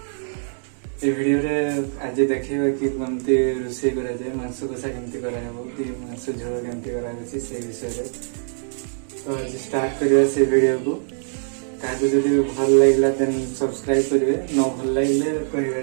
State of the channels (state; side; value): silent; left; digital silence